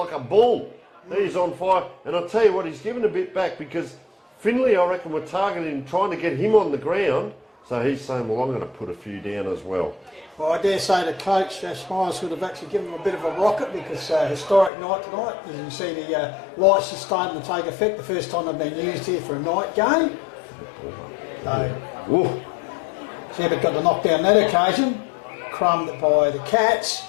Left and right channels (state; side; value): drops out; right; at 14.7 s